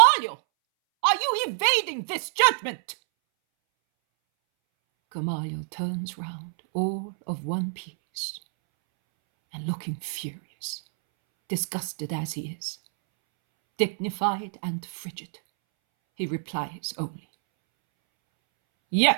are you evading this judgment?" Gamaliel turns round, all of one piece, and looking furious, disgusted as he is, dignified and frigid, he replies only,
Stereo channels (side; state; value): left; silent; 60 dB below the other